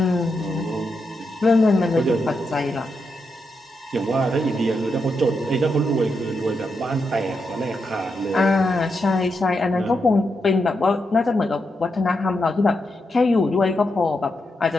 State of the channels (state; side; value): normal; both; correlation 0.84